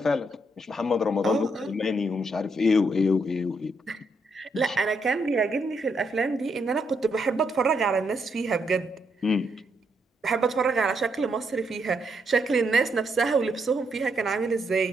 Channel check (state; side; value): normal; both; correlation 0.77